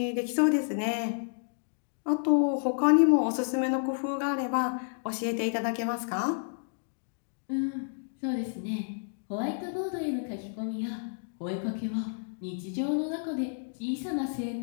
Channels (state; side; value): silent; right; digital silence